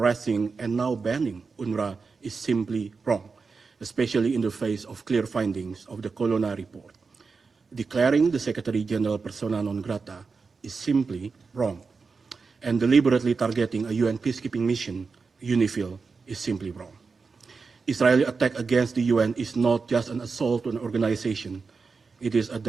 and now banning UNRWA is simply wrong, especially in the face of clear findings of the Colonna report. Declaring the Secretary General persona non grata is simply wrong, and deliberately targeting a UN peacekeeping mission, UNIFIL, is simply wrong. Israeli attack against the UN is not just an assault on an organization, it is a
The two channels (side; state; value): left; quieter; 4.7 dB